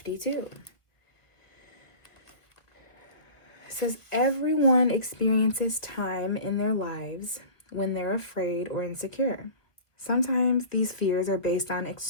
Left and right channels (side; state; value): right; late; 1.2 ms